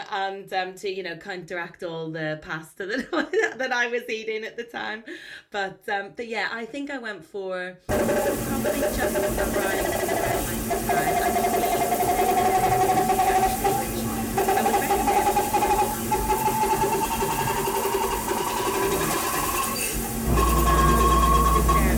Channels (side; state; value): both; identical; correlation 1.00